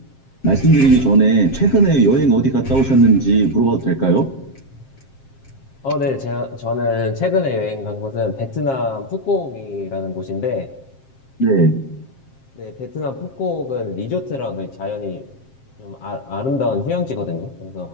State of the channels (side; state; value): right; late; 7.5 ms